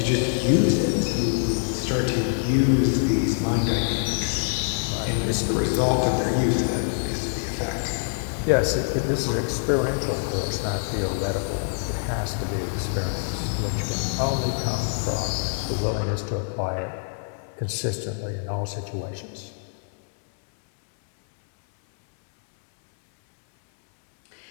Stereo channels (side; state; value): right; silent; 62 dB below the other